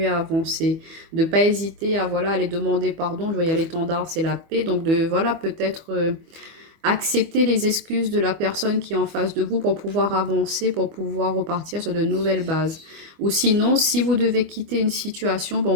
à avancer. De ne pas hésiter à voilà, aller demander pardon. Je vois il y a l'étendard, c'est la paix. Donc de voilà peut-être accepter les excuses de la personne qui est en face de vous pour pouvoir avancer, pour pouvoir repartir sur de nouvelles bases. Ou sinon, si vous devez quitter une situation, bon,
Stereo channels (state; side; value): late; left; 25 ms